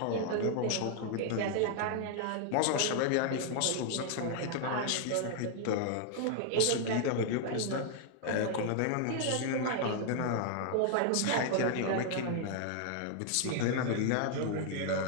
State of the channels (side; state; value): both; different; correlation 0.00